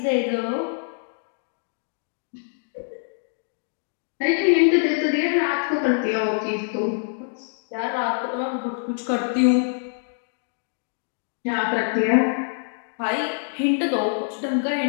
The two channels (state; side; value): silent; right; digital silence